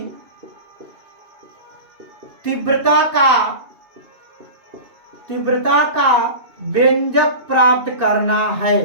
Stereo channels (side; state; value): left; late; 2.8 ms